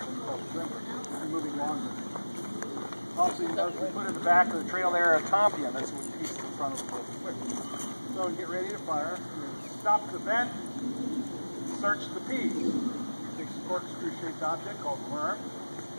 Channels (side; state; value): both; inverted; correlation -1.00